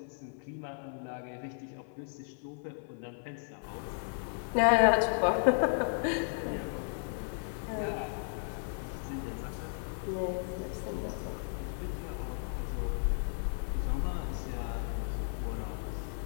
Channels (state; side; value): silent; right; 55 dB below the other